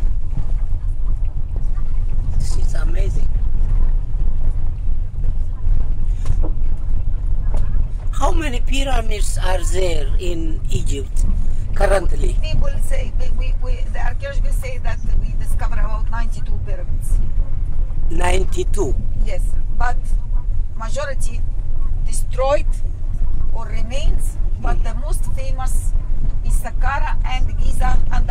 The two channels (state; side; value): identical; both; correlation 1.00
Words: It's amazing. How many pyramids are there in Egypt currently? People say, the archaeologists say that we discovered about 92 pyramids. 92? Yes, but majority destroyed or remains, but the most famous is Saqqara and Giza and